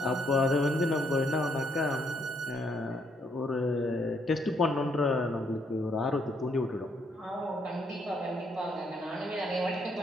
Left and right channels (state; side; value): normal; both; correlation 0.72